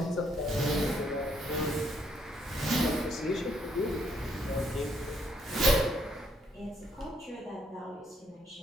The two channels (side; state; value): both; normal; correlation 0.71